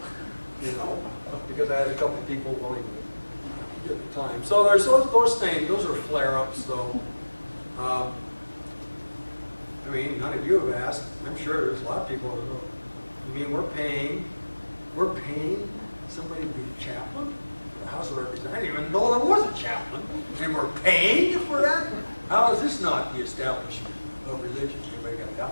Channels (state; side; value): inverted; both; correlation -1.00